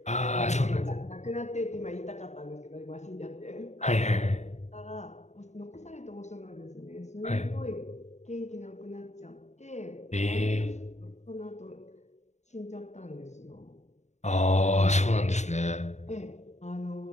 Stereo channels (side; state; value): right; late; 0.33 ms